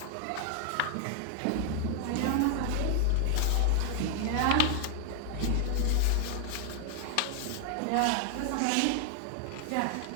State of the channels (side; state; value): both; different; correlation 0.00